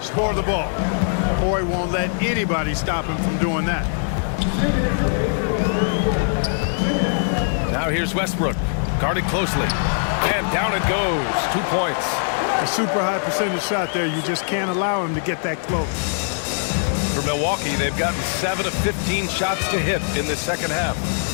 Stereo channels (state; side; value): silent; right; 61 dB below the other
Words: score the ball. Boy won't let anybody stop him from doing that. Now here's Westbrook, guarded closely, and down it goes. 2 points. A super high percentage shot there. You just can't allow him to get that close. For Milwaukee, they've gotten 7 of 15 shots to hit in this second half.